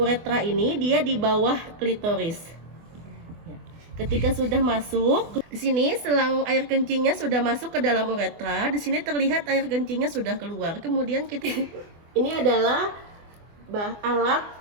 ini dia di bawah klitoris. Ya. Ketika sudah masuk, di sini selang air kencingnya sudah masuk ke dalam uretra. Di sini terlihat air kencingnya sudah keluar. Kemudian kita ini adalah alat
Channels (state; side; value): late; left; 24 ms